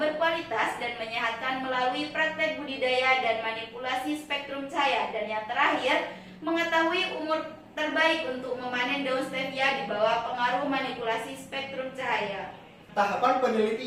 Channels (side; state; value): both; identical; correlation 1.00